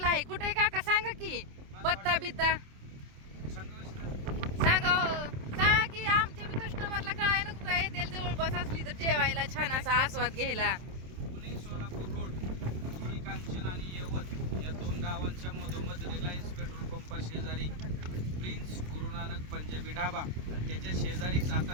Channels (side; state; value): left; late; 27 ms